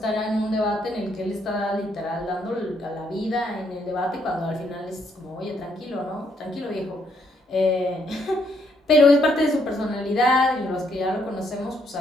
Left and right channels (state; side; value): normal; both; correlation 0.72